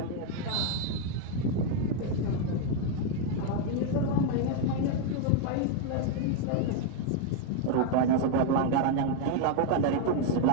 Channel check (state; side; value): different; both; correlation 0.01